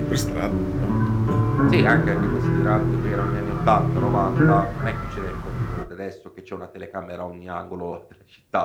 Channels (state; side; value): identical; both; correlation 1.00